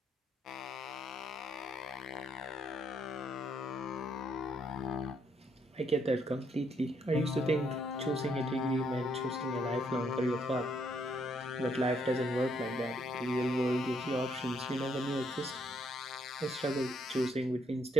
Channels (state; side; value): normal; both; correlation 0.72